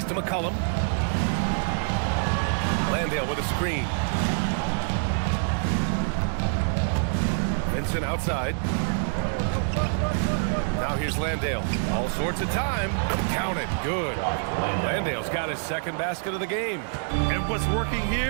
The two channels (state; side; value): silent; left; digital silence